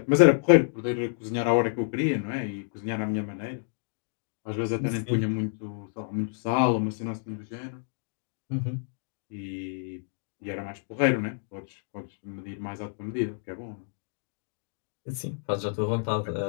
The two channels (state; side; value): silent; right; digital silence